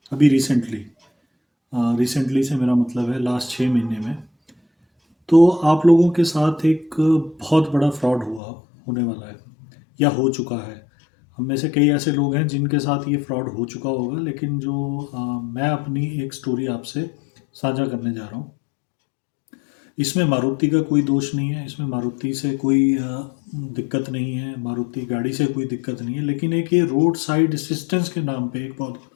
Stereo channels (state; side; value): drops out; right; at 8.4 s